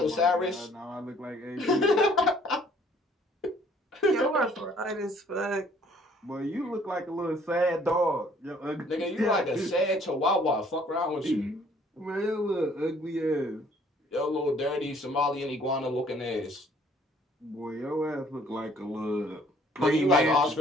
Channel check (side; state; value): both; normal; correlation 0.59